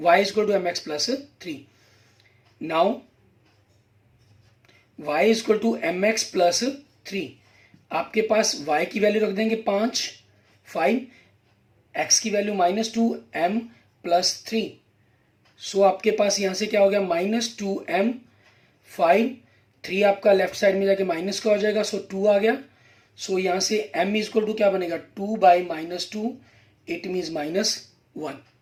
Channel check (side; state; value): both; identical; correlation 1.00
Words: = mx + 3। Now y = mx + 3, आपके पास y की वैल्यू रख देंगे 5, 5, x की वैल्यू -2, m प्लस 3। सो आपके पास यहाँ से क्या हो गया, -2m, 5, 3 आपका लेफ्ट साइड में जाके माइनस का हो जाएगा, सो 2 आ गया। सो यहाँ से m इजक्वल टू क्या बनेगा, 2/-2, इट मीन्स -1।